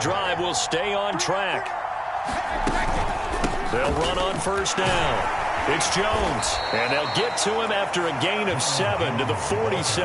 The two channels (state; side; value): identical; both; correlation 1.00